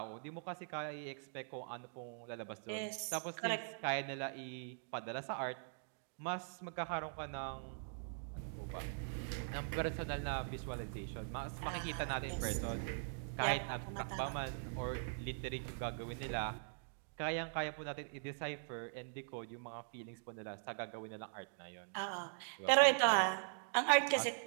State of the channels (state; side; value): silent; left; digital silence